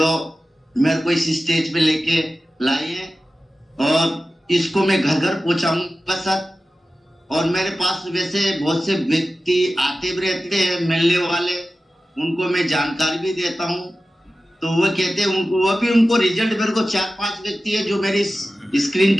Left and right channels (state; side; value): normal; both; correlation 0.95